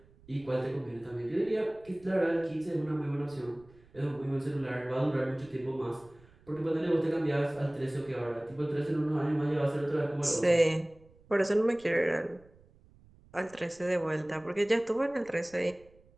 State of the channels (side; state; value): right; noise; rumble, 27 dB below the sound